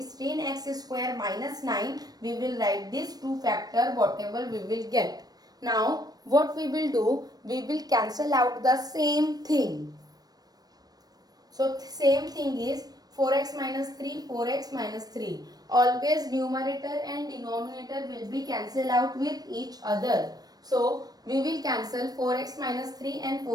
square minus 9, we will write this 2 factor whatever we will get. Now what we will do, we will cancel out the same thing. So same thing is 4x minus 3, 4x minus 3. Always numerator and denominator will be cancelled out with each other. So we will cancel 4x minus 3 and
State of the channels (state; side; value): late; left; 0.19 ms